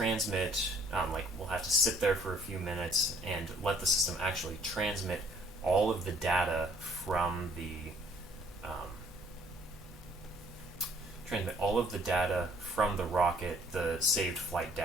like we'll have to sit there for a few minutes and let the system actually transmit all of the data from the rocket, the saved flight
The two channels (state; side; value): normal; both; correlation 0.60